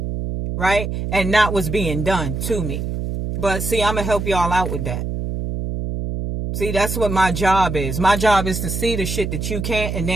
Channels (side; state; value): right; noise; hum, 3 dB below the sound